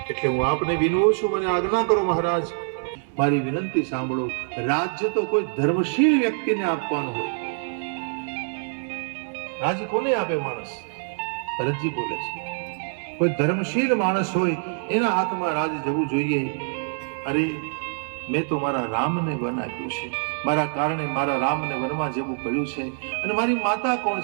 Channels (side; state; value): left; silent; 62 dB below the other